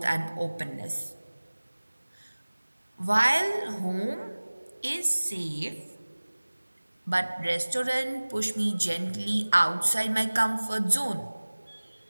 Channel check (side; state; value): both; inverted; correlation -1.00